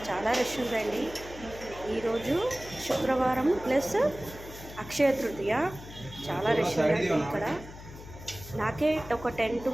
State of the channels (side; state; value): left; noise; hum, 15 dB below the sound